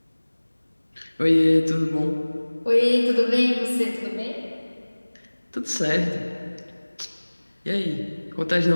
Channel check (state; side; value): inverted; both; correlation -1.00